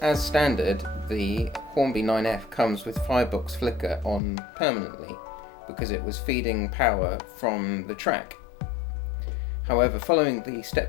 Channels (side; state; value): right; drops out; at 4.2 s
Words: standard, the Hornby 9F comes with firebox flicker on permanently because it was feeding power from the track. However, following the